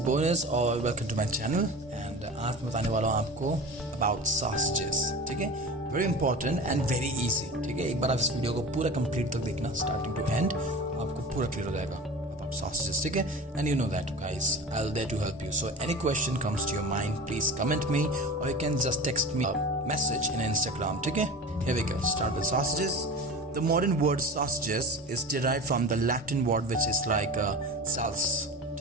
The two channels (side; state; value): both; normal; correlation 0.34